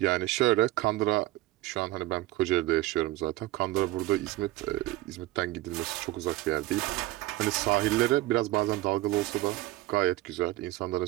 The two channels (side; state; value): left; quieter; 17.5 dB